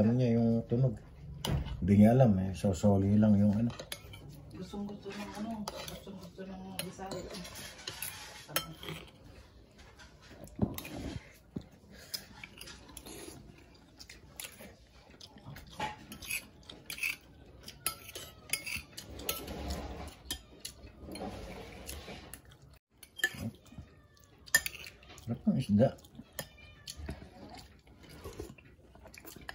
niya yung tunog. Hindi niya alam eh, sosoli lang yung ano. Gustong-gusto ng ano. Gustong-gusto ng Bisaya. Sarap ng isda.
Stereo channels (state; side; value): identical; both; correlation 1.00